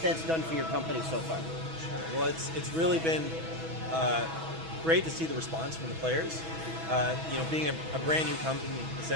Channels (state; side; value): late; left; 6.2 ms